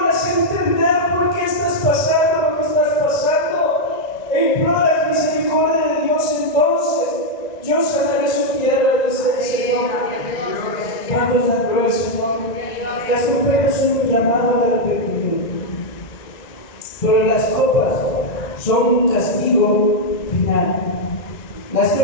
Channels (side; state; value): right; late; 1.9 ms